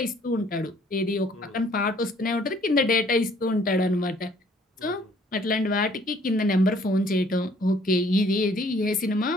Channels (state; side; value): normal; both; correlation 0.60